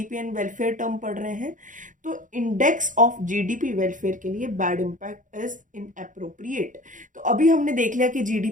एंड वेलफेयर टर्म पढ़ रहे हैं, तो इंडेक्स ऑफ जीडीपी वेलफेयर के लिए बैड इम्पैक्ट इज इनअप्रोप्रिएट। तो अभी हमने देख लिया कि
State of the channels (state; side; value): late; left; 0.38 ms